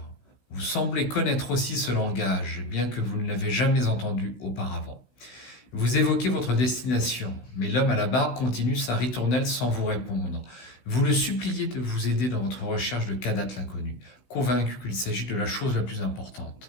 Vous semblez connaître aussi ce langage, bien que vous ne l'avez jamais entendu auparavant. Vous évoquez votre destination, mais l'homme à la barbe continue sa ritournelle sans vous répondre. Vous le suppliez de vous aider dans votre recherche de Kadath l'inconnu. convaincu qu'il s'agit de la chose la plus importante.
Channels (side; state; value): right; late; 16 ms